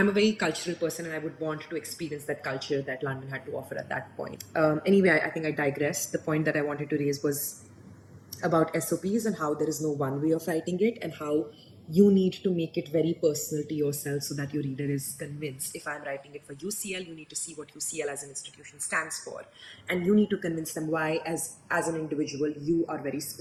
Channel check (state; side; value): identical; both; correlation 1.00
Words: a very cultural person, and I would want to experience that culture that London had to offer at that point. Anyway, I think I digressed. The point that I wanted to raise was about SOPs and how there is no one way of writing it, and how you need to make it very personal to yourself so that your reader is convinced. If I'm writing it for UCL, you need to see what UCL as an institution stands for, and you need to convince them why, as an individual, you are very